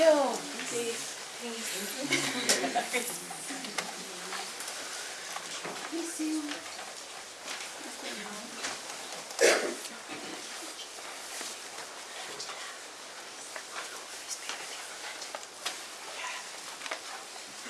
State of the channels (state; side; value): identical; both; correlation 1.00